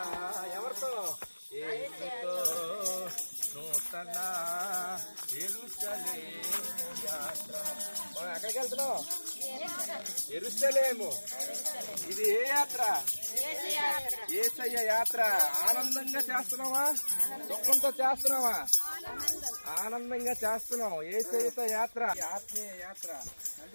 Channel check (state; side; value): inverted; both; correlation -1.00